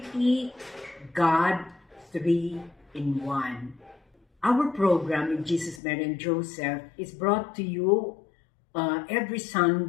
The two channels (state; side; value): drops out; right; at 5.8 s